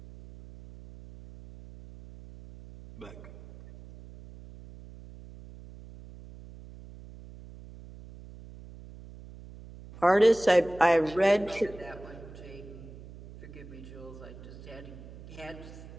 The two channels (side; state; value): right; noise; hum, 17 dB below the sound